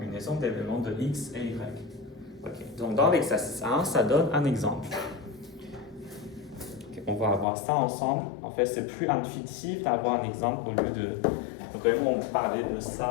d'éléments de x et y. Okay. Donc, dans l'exercice 1, ça donne un exemple. Okay. On va voir ça ensemble. En fait, c'est plus intuitif d'avoir un exemple au lieu de vraiment parler de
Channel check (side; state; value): right; drops out; at 7.5 s